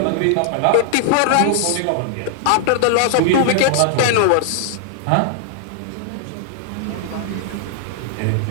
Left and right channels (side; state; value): both; different; correlation -0.01